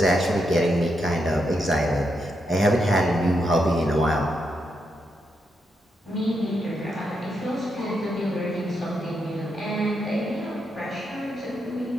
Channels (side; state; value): both; normal; correlation 0.82